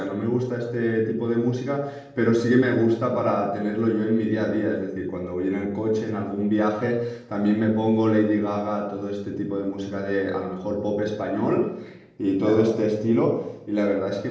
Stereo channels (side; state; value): both; identical; correlation 1.00